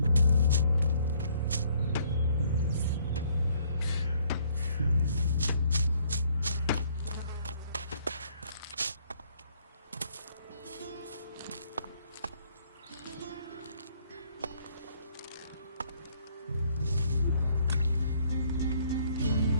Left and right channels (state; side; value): inverted; both; correlation -0.65